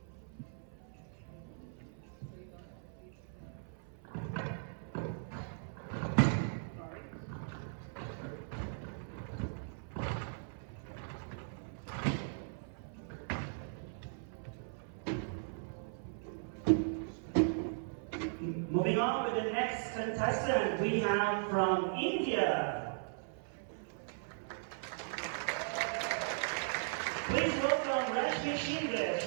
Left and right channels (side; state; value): left; silent; 52 dB below the other